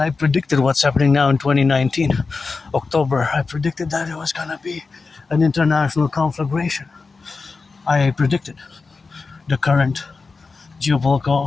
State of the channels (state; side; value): quieter; right; 4.3 dB